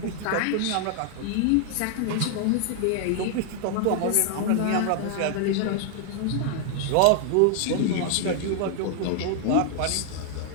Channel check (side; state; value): both; different; correlation 0.00